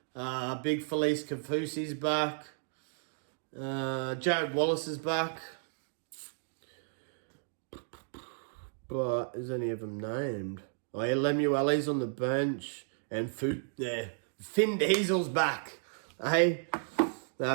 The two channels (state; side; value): silent; left; digital silence